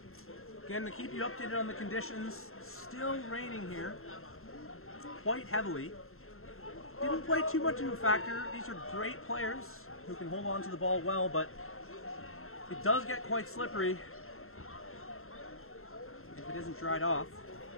Again, to keep you updated on the conditions, still raining here, quite heavily. Didn't play too much of a factor. These are great players who can hold on to the ball well, but it does get quite slippery if it isn't dried off,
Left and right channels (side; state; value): right; late; 0.62 ms